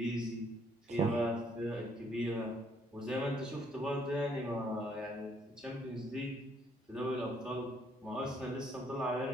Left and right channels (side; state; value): both; normal; correlation 0.67